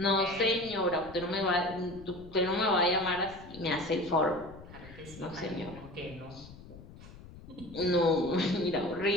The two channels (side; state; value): left; noise; rumble, 18 dB below the sound